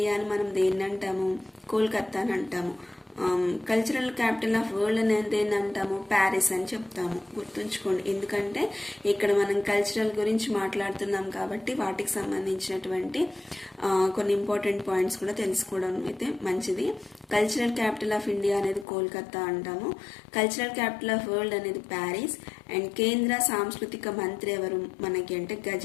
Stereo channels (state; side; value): drops out; right; at 18.9 s